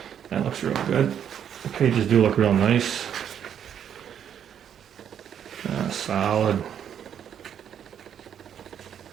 that looks real good. The pages do look real nice. Solid.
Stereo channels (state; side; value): quieter; left; 8.9 dB